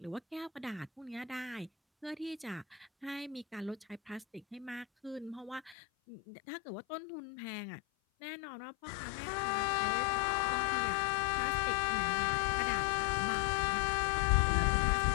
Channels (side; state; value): right; drops out; at 5.8 s